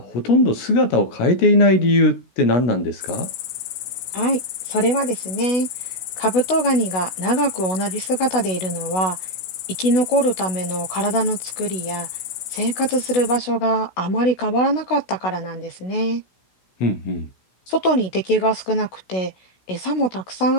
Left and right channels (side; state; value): right; late; 17 ms